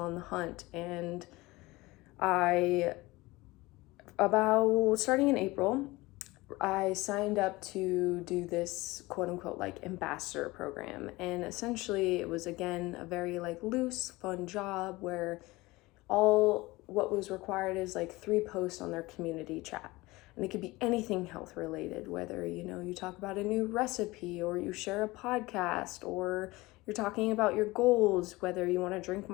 the hunt. And I, about starting in April, I signed up to do this quote unquote like ambassador program. And essentially it was again a very like loose, fun job where all what was required is like 3 posts on their community chat. And it could be anything health related, whether, you talk about a new recipe, or you share a podcast, or you're talking about your goals, whether you want to drink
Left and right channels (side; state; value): right; quieter; 21.0 dB